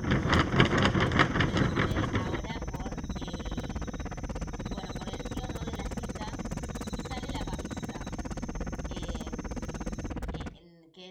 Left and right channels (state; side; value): identical; both; correlation 1.00